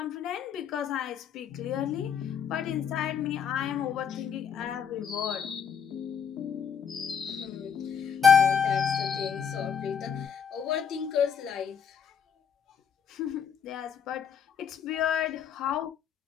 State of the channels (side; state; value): right; quieter; 7.3 dB